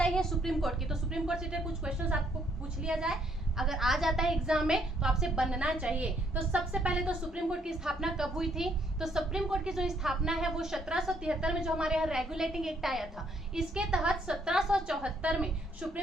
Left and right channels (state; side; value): normal; both; correlation 0.69